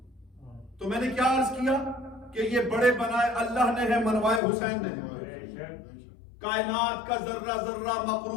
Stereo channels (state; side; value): drops out; right; at 4.4 s